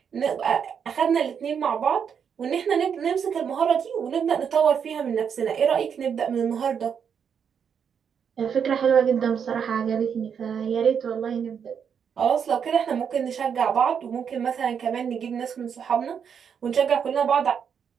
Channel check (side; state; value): left; quieter; 7.3 dB